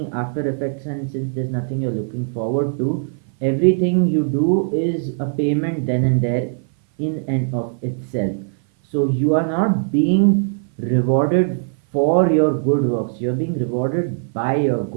after effects and since there's nothing you're looking forward to, everything you do is a payment then and there in and of itself. So you are not being rewarded for your good works, you're being rewarded by your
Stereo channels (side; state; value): left; silent; 58 dB below the other